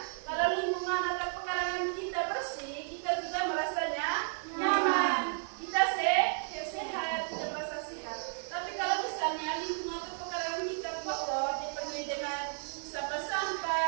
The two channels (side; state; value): left; silent; 56 dB below the other